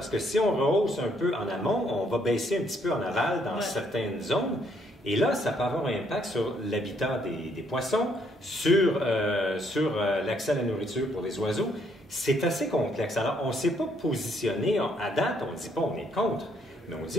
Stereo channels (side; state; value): both; normal; correlation 0.70